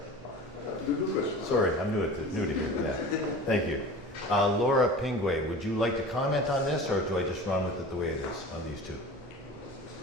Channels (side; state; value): both; normal; correlation 0.37